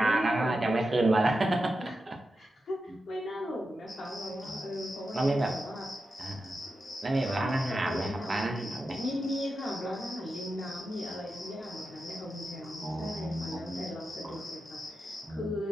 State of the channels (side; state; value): both; normal; correlation 0.89